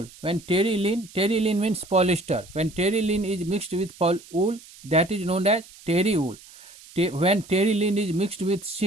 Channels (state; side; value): noise; right; hiss, 21 dB below the sound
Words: When terylene means polyester. When terylene is mixed with wool, that is known as terry wool. When terylene is mixed with